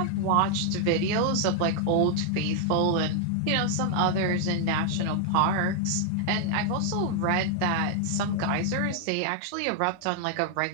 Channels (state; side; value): different; both; correlation 0.00